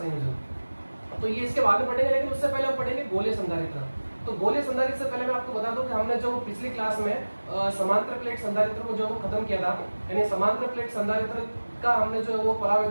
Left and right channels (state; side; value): inverted; both; correlation -1.00